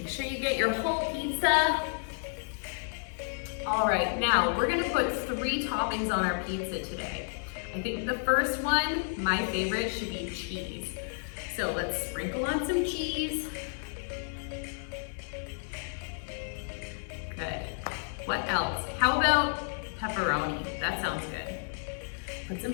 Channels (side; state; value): right; silent; 57 dB below the other